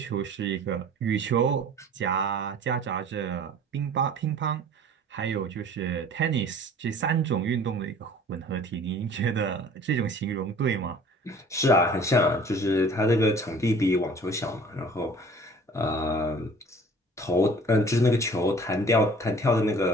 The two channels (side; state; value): both; normal; correlation 0.48